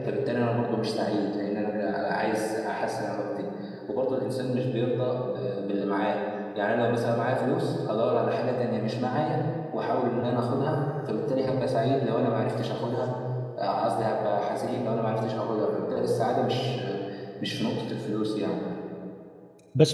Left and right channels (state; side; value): identical; both; correlation 1.00